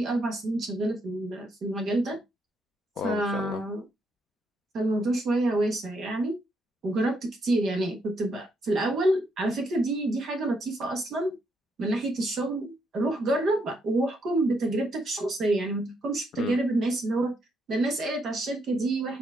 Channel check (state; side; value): normal; both; correlation 0.76